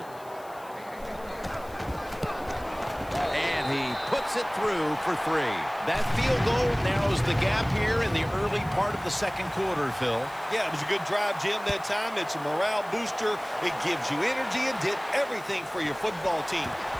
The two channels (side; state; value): left; noise; hiss, 24 dB below the sound